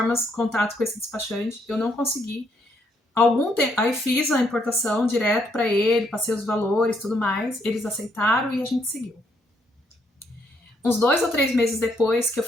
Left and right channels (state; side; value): normal; both; correlation 0.73